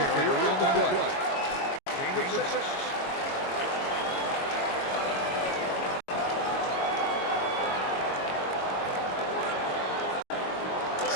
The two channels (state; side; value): late; right; 22 ms